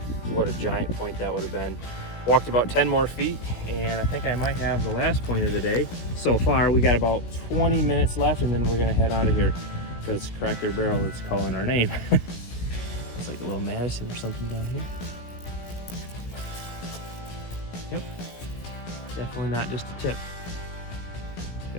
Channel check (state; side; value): late; right; 17 ms